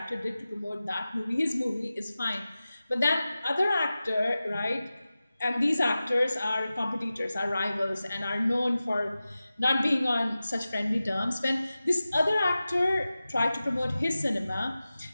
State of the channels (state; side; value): inverted; both; correlation -0.95